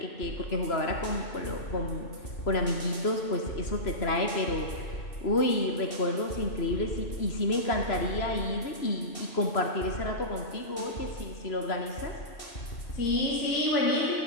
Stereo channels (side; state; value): right; late; 3.0 ms